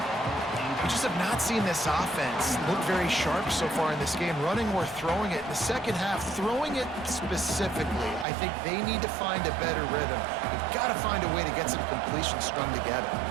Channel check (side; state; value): left; drops out; at 8.2 s